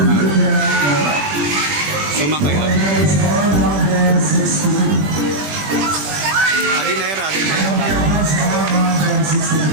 Sumakay ako. Adinera.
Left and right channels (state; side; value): late; left; 21 ms